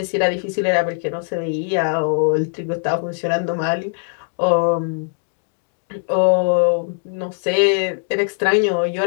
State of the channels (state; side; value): silent; right; digital silence